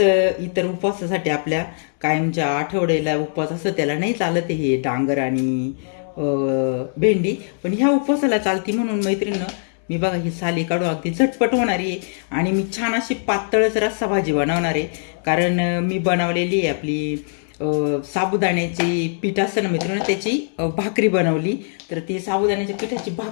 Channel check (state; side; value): silent; right; 65 dB below the other